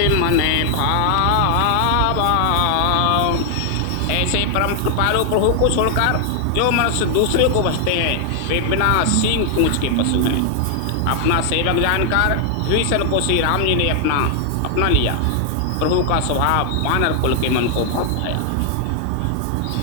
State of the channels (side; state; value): both; different; correlation 0.00